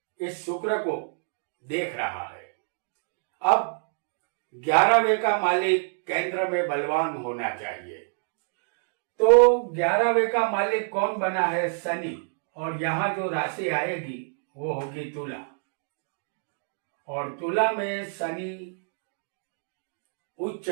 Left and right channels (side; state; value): left; silent; digital silence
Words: इस शुक्र को देख रहा है। अब 11वें का मालिक केंद्र में बलवान होना चाहिए। तो 11वें का मालिक कौन बना है? शनि। और यहां जो राशि आएगी वो होगी तुला। और तुला में शनि उच्च